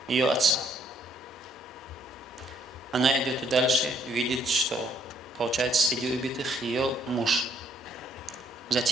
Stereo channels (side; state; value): both; normal; correlation 0.66